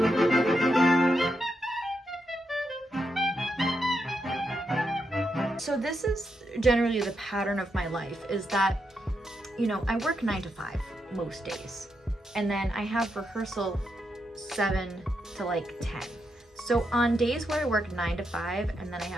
So this is generally the pattern of my life, is that, you know, I work 9 to 5 most days. And then I have rehearsal 7 to like 10. So on days where I work 9 to 5 and then I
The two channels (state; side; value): normal; both; correlation 0.83